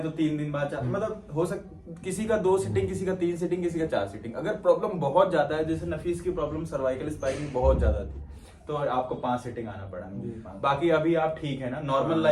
तो 3 दिन बाद मतलब हो किसी का 2 सीटिंग, किसी का 3 सीटिंग, किसी का 4 सीटिंग। अगर प्रॉब्लम बहुत ज्यादा है, जैसे नफीस की प्रॉब्लम सर्वाइकल स्पाइन बहुत ज्यादा थी, तो आपको 5 सीटिंग आना पड़ा। बाकी अभी आप ठीक है ना? नॉर्मल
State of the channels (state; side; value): identical; both; correlation 1.00